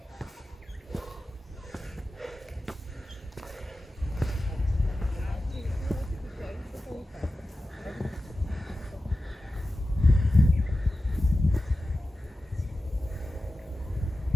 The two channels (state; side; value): normal; both; correlation 0.94